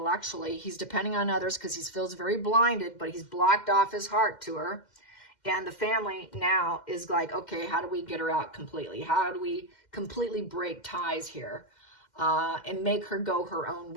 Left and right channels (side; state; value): right; late; 2.1 ms